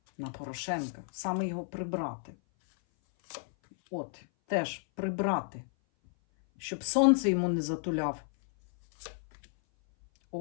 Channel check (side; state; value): right; silent; 56 dB below the other